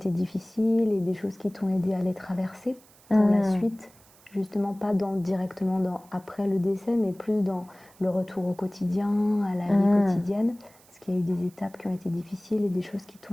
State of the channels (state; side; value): noise; right; hiss, 27 dB below the sound